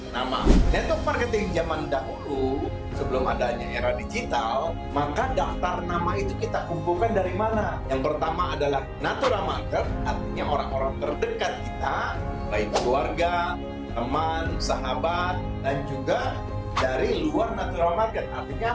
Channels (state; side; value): identical; both; correlation 1.00